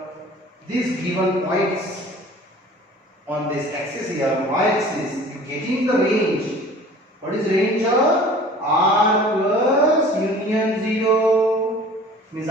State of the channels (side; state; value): both; normal; correlation 0.45